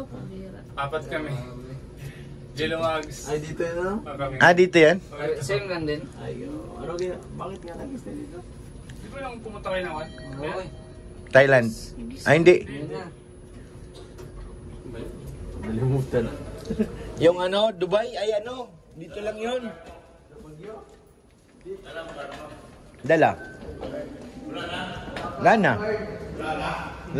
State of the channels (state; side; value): identical; both; correlation 1.00